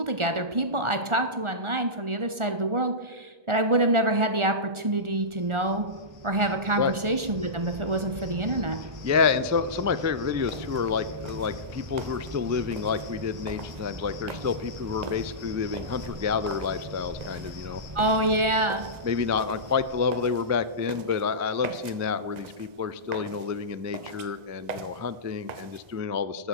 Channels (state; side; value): late; left; 1.4 ms